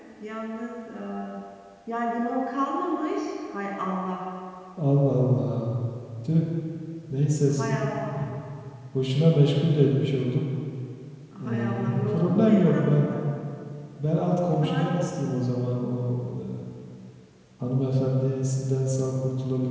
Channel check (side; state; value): both; identical; correlation 1.00